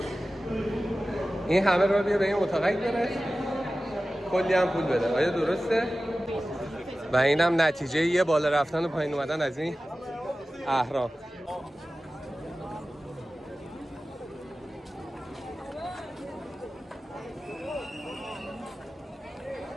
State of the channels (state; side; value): normal; both; correlation 0.95